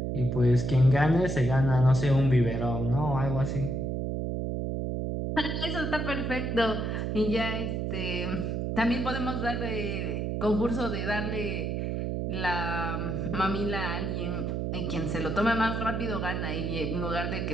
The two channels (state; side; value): noise; right; hum, 1 dB below the sound